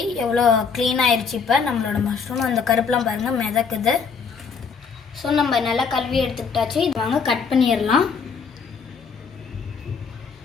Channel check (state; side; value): quieter; right; 5.7 dB